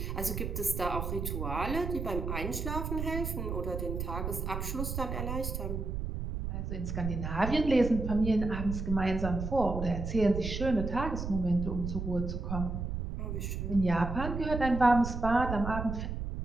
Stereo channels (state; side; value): noise; right; rumble, 4 dB below the sound